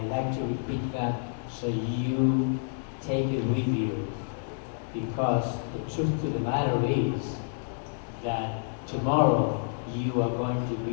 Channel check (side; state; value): right; silent; 59 dB below the other